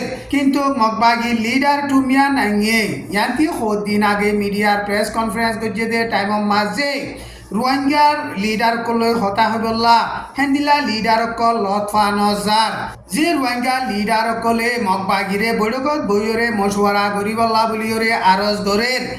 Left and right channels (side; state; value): both; identical; correlation 1.00